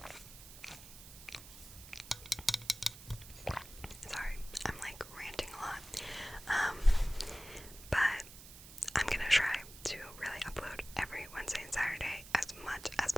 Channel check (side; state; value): right; noise; hiss, 16 dB below the sound